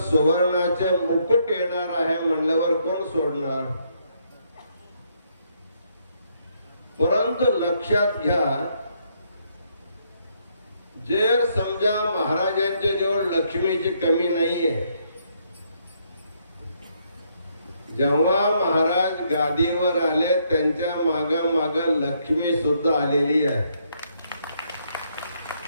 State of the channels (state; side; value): inverted; both; correlation -0.73